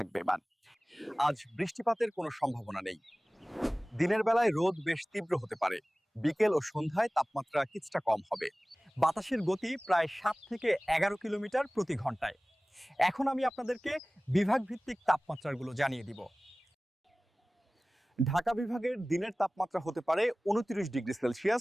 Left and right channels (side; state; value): both; normal; correlation 0.98